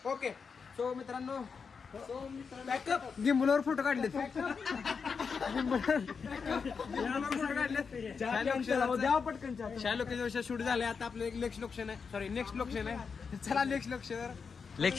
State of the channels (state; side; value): quieter; right; 5.6 dB